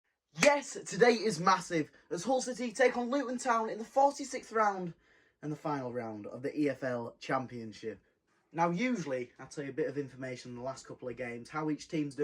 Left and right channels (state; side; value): identical; both; correlation 1.00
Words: Yes, today is massive, as Hull City take on Luton Town in the 46th round and the final round of the EFL Championship. Now, usually, I tell you a bit of information in the last couple of games, how each team's